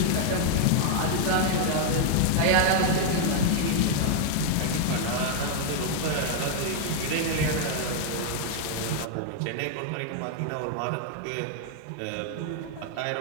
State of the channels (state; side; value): different; both; correlation 0.00